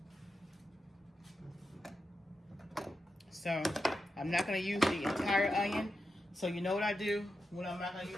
So I'm not going to use the entire onion. So you know what I do when I'm not going to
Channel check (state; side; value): normal; both; correlation 0.88